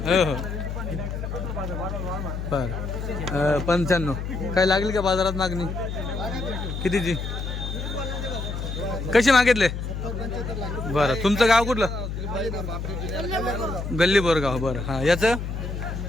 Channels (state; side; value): noise; left; hum, 5 dB below the sound